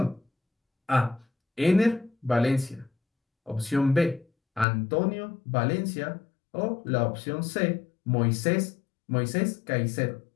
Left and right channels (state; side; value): drops out; right; at 4.7 s